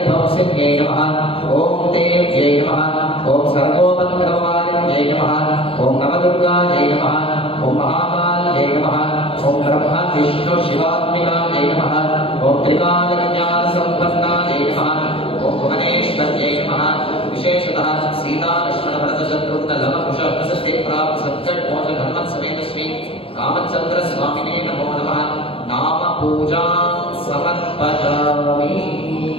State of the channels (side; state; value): right; late; 0.27 ms